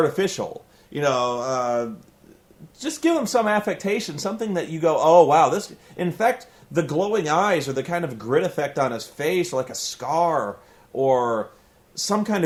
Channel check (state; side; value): identical; both; correlation 1.00